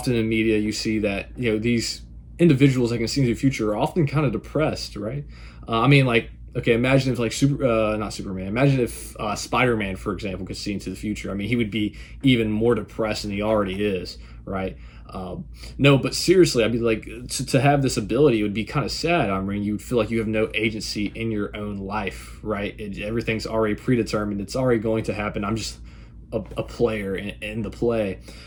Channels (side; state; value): both; identical; correlation 1.00